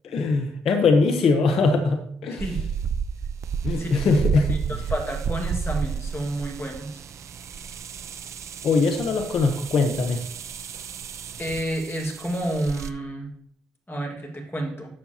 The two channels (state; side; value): normal; both; correlation 0.75